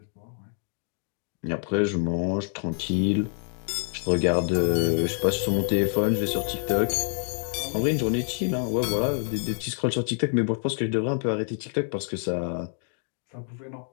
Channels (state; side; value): silent; right; 60 dB below the other